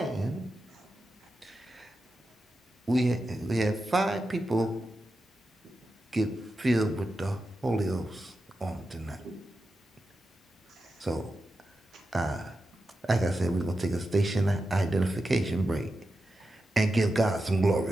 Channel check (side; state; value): both; normal; correlation 0.90